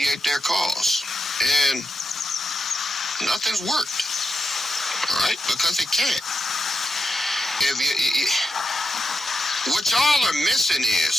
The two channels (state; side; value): normal; both; correlation 0.88